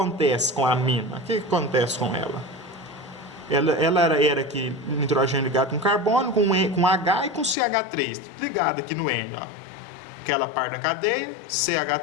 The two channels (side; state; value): right; drops out; at 7.6 s